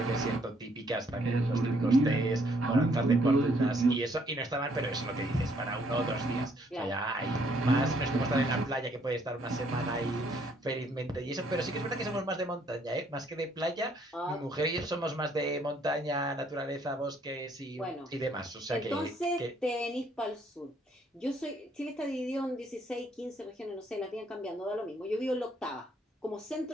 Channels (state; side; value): normal; both; correlation 0.67